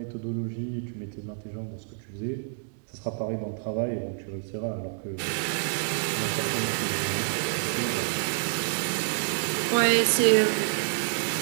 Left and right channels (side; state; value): left; silent; digital silence